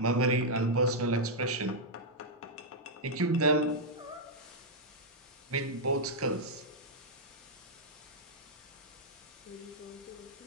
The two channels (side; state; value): both; normal; correlation -0.05